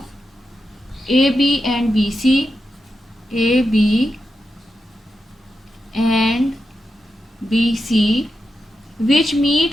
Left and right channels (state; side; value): normal; both; correlation 0.89